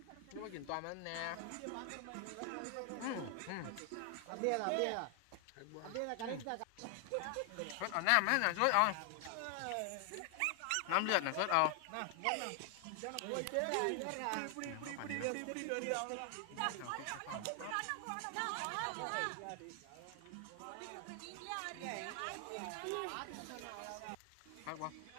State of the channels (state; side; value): different; both; correlation 0.00